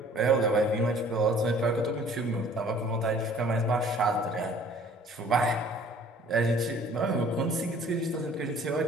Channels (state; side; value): normal; both; correlation 0.53